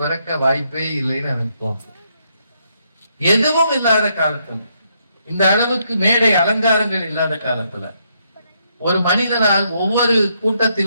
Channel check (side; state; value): both; inverted; correlation -0.76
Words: வாய்ப்பே இல்லைன்னு எனக்கு தோணும். எதுவும் இல்லாத காலத்துல, இந்த அளவுக்கு மேடை அலங்காரங்கள் இல்லாத காலத்துல, ஒரு மனிதனால் ஒவ்வொரு